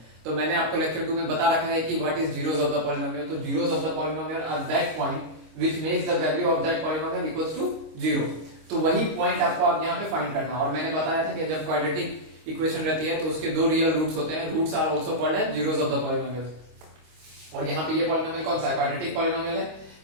तो मैंने आपको लेक्चर 2 में बता रखा है कि what is zeros of the polynomial. तो zeros of the polynomial are that point which makes the value of that polynomial equals to 0। तो वही पॉइंट आपको आप यहाँ पे फाइंड करना है। और मैंने बताया था कि जब क्वाड्रेटिक इक्वेशन रहती है तो उसके दो रियल रूट्स होते हैं। Roots are also called as zeros of the polynomial. और यहाँ पे ये पॉलिनोमियल कौन सा है? क्वाड्रेटिक पॉलिनोमियल है।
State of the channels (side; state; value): left; late; 25 ms